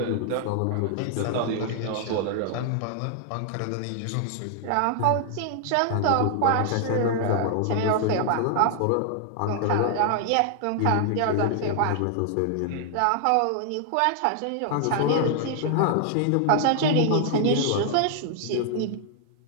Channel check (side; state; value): both; different; correlation 0.00